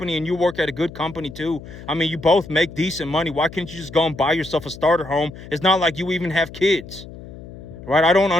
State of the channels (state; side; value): noise; left; hum, 15 dB below the sound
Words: and you work at a good company too. I mean, you both make decent money. Why can't you just go and buy yourself a starter home? It's not like you even have kids, right? I don't